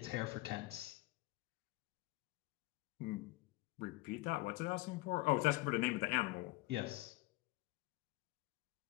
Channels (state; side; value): quieter; right; 21.1 dB